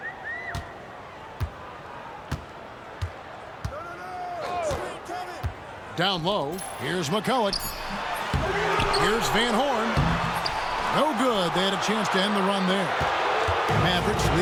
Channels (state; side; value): identical; both; correlation 1.00